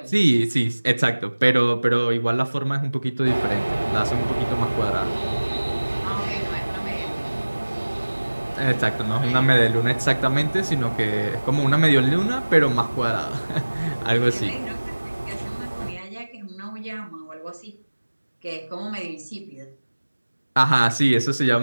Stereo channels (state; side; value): inverted; both; correlation -1.00